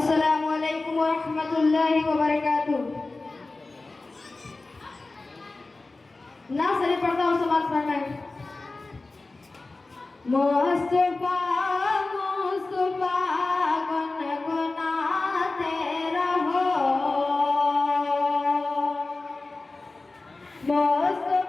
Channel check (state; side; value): quieter; right; 3.4 dB